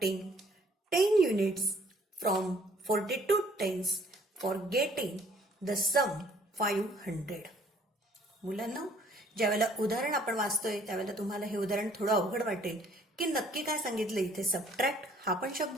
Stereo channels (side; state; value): both; normal; correlation 0.60